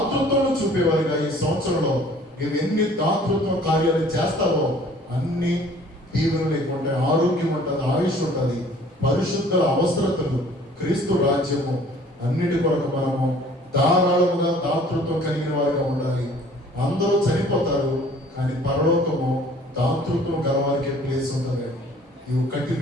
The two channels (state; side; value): normal; both; correlation 0.53